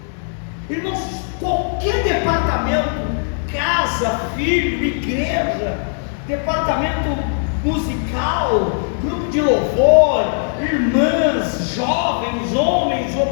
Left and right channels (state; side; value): silent; right; digital silence